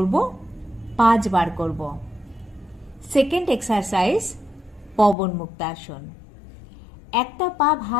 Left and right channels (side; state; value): right; drops out; at 5.2 s